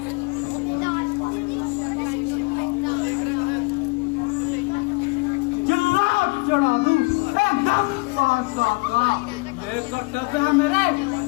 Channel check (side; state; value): right; quieter; 28.2 dB